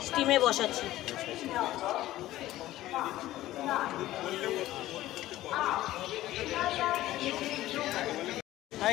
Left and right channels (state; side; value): quieter; right; 15.2 dB